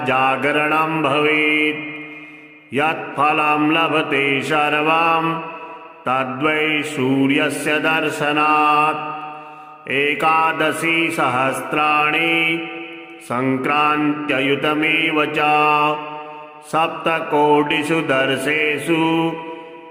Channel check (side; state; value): both; identical; correlation 1.00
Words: जागरणं भवेत् यत्फलं लभते सर्वं तद्वै सूर्यस्य दर्शनात् एकादशी सहस्राणि संक्रान्त्ययुतमेव च सप्तकोटिषु दर्शेषु